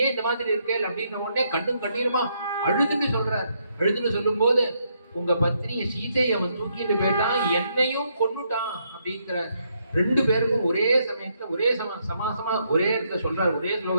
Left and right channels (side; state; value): both; inverted; correlation -0.75